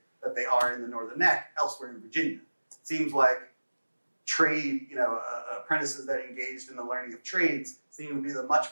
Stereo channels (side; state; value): both; inverted; correlation -1.00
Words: that they are in the Northern Neck elsewhere in Virginia. It seems like trade, apprentices that engaged in the learning of trades seem to be the